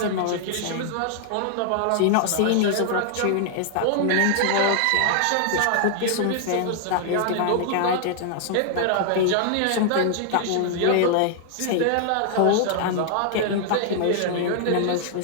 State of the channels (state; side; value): different; both; correlation -0.01